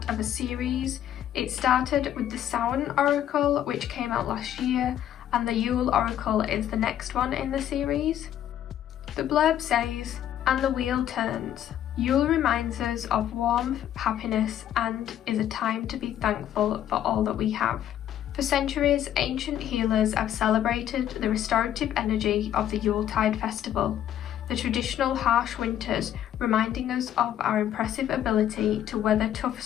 of a series. It started with the Samhain Oracle, which came out last year, and the Yule Oracle is the next one in the series. The blurb says, "And the wheel turns. Yule reminds us of warmth, happiness, and is a time to be thankful for all that we have." For centuries, ancient healers have celebrated the restorative energy of the Yuletide festival, the traditional harsh winters reminding us of our impressive ability to weather tough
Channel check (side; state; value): right; quieter; 11.1 dB